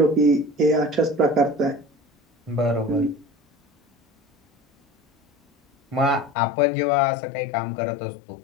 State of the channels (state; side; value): drops out; right; at 6.4 s